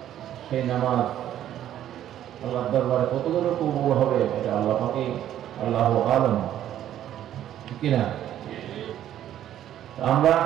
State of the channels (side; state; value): left; quieter; 11.5 dB